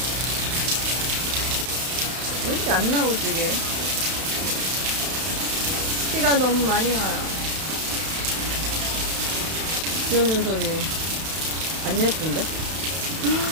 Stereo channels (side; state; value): left; late; 31 ms